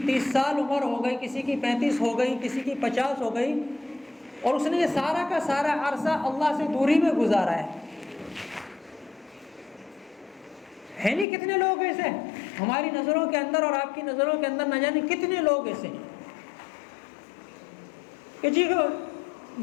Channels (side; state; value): right; drops out; at 11.2 s